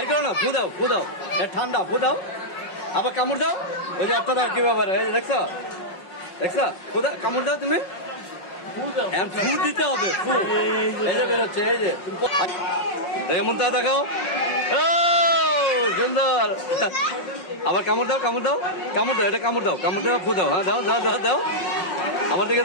করো না ফু দাও ফু দাও ঠান্ডা ফু দাও আবার কামড় দাও ওই যে একটা দাও কি ব্যাপার এই যে দেখছো দেখছো খুদা কামড় দাও তুমি ফু দিতে হবে ফু এই যে বেরোচ্ছে এই যে দেখে মন তা দেখাও ও সুন্দর আবার কামড় দাও কামড় দাও কামড় দাও এটা কামড় দাও কামড় দাও ফু দাও হ্যাঁ দাও দাও দাও দাও আমার দিকে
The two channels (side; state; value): right; late; 5.5 ms